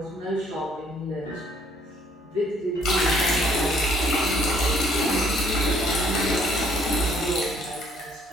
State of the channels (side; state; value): both; normal; correlation 0.63